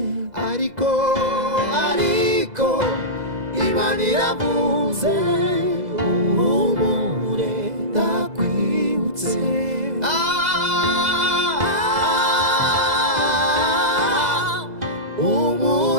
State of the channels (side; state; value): left; late; 2.0 ms